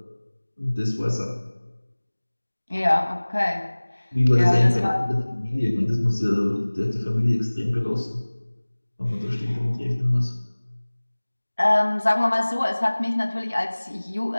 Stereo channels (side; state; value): both; inverted; correlation -1.00